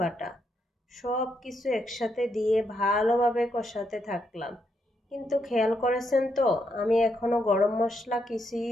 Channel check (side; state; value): both; normal; correlation 0.79